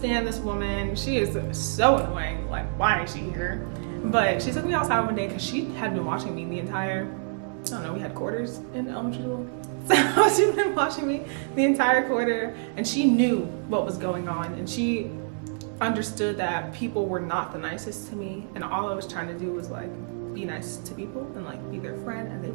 this woman. She is so annoying. Like, why is she here? But she took me outside one day because she had been watching me the entire, I don't know, we had quarters in elementary school. So she'd been watching me the entire quarter, and she knew what was going on, and she understood that people were not the nicest to me, and all I was trying to do was like be nice to people and like be their friend, and they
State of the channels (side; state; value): left; silent; digital silence